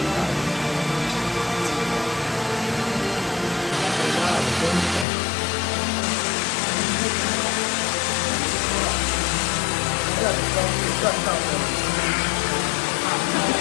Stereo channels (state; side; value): drops out; right; at 5.1 s